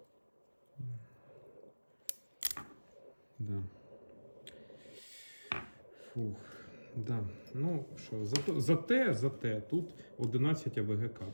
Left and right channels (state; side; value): inverted; both; correlation -1.00